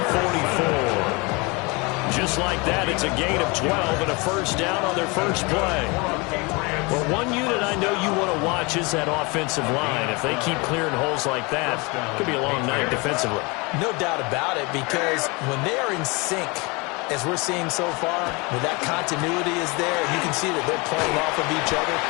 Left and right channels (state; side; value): quieter; right; 27.3 dB